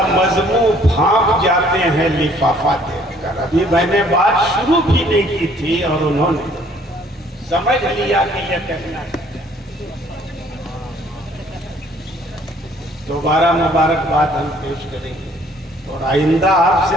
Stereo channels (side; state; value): both; normal; correlation 0.60